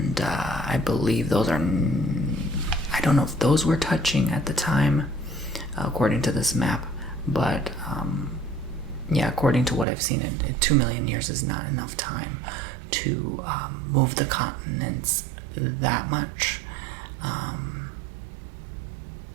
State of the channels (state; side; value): drops out; left; at 9.9 s